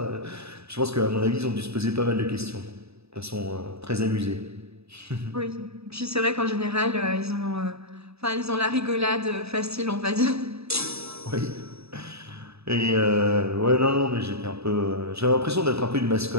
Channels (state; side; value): late; left; 0.79 ms